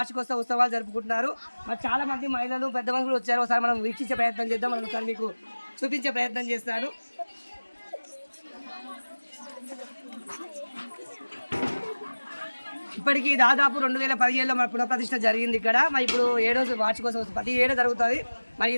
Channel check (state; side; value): inverted; both; correlation -1.00